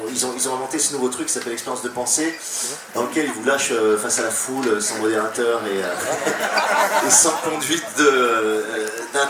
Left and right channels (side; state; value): both; identical; correlation 1.00